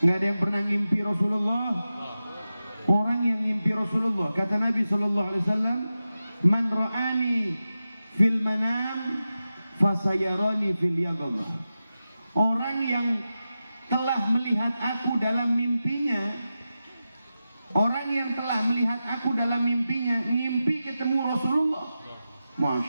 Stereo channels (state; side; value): inverted; both; correlation -0.92